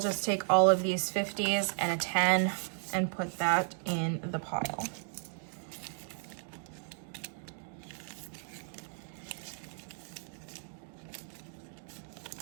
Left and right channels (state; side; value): silent; left; 55 dB below the other